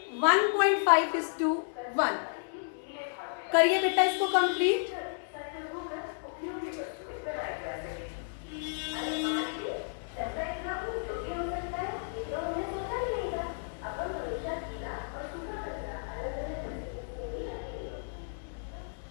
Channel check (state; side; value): silent; right; digital silence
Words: 1.5:1. करिए बेटा इसको कंप्लीट.